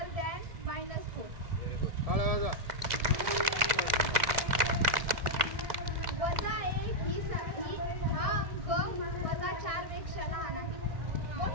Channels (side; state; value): left; late; 2.0 ms